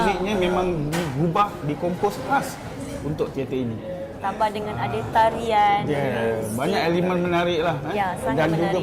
memang diubah, dikompos khas untuk teater ini. Tambah dengan ada tarian. Banyak elemen menarik lah. Dan menarik. juga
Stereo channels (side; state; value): both; identical; correlation 1.00